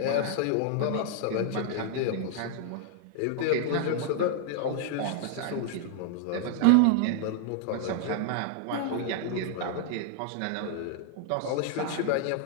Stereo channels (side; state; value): both; different; correlation 0.00